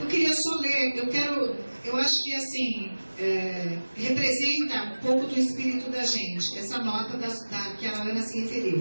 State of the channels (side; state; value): both; inverted; correlation -1.00